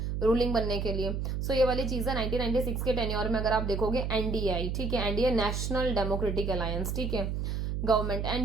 रूलिंग बनने के लिए। सो ये वाली चीज है। 1996 के टेन्योर में अगर आप देखोगे एनडीए, ठीक है, एनडीए नेशनल डेमोक्रेटिक अलायंस, ठीक है, government,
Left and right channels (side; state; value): right; noise; hum, 2 dB below the sound